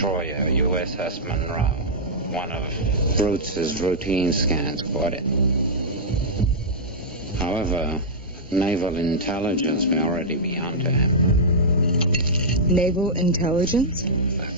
USS Monroe. One of Brutes' routine scans caught it. However, naval intelligence may already be onto him. Naval intelligence?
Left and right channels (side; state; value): both; normal; correlation -0.10